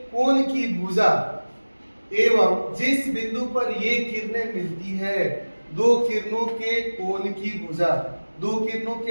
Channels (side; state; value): both; inverted; correlation -1.00